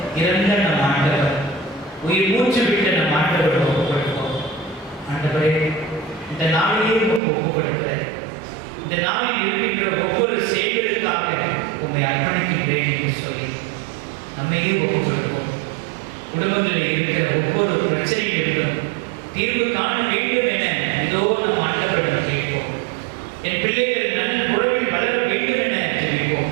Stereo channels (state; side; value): drops out; left; at 7.2 s